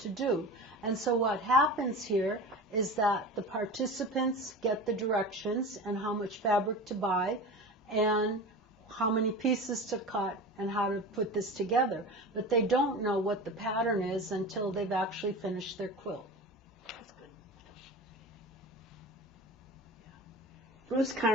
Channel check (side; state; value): both; normal; correlation 0.32